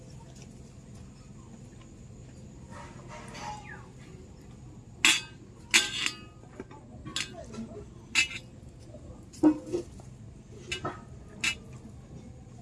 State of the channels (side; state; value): both; identical; correlation 1.00